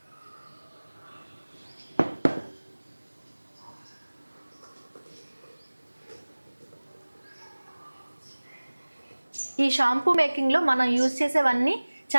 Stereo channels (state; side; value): inverted; both; correlation -1.00